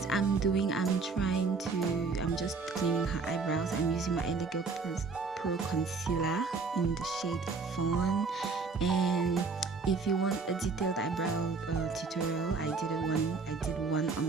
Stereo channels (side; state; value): left; quieter; 4.4 dB